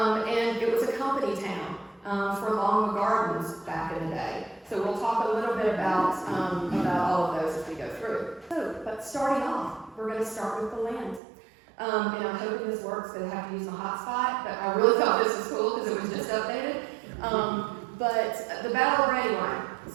it was a company town for Longwood Gardens back in the day. So we'll talk a little bit about all of those as we go through. So, but starting off, we're going to start with the land. And I'm hoping this works, because I have to use my hotspot, but I really thought this was cool because it was just updated. But the Battle of Brandywine.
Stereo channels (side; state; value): left; drops out; at 11.2 s